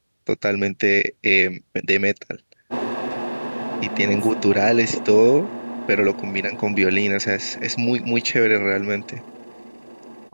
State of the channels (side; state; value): both; inverted; correlation -1.00